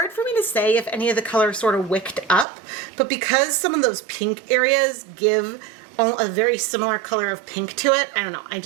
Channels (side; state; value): left; drops out; at 2.5 s